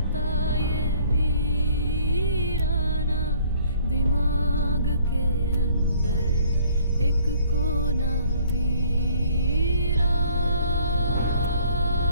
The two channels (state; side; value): inverted; both; correlation -0.59